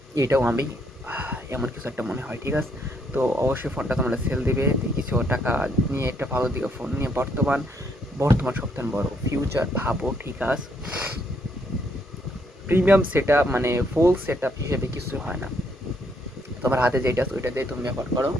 এটাও আমি এমন কিছু একটা মনে হয়, ঠিক আছে। তো অবশ্যই ফোনটা তোমরা সেল দিবে, কিছু টাকা নিয়ে একটা ভালো দিকে ফোন নিয়ে বর্তমান সবথেকে বড় ফিউচার ভাবো, ঠিক আছে। প্রিমিয়াম সেট মানে ফুল সেট আপ হিসেবে কিছু হয় না, তোমার হাতে যেটা আছে ওইটা দিয়ে তুমি ব্যবহার করো।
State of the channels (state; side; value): normal; both; correlation 0.72